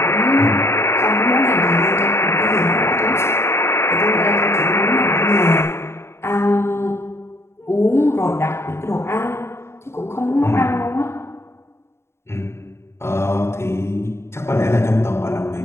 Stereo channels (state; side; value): late; right; 0.13 ms